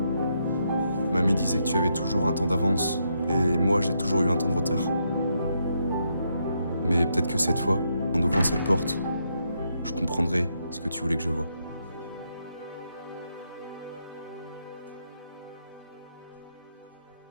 Mamie disait que tu avais toujours un temps d'avance, et moi j'ai toujours eu un temps de retard. Mais peut-être que cette fois, en ouvrant cette porte, je comprendrai ce que tu voulais que je voie.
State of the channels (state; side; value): inverted; both; correlation -0.79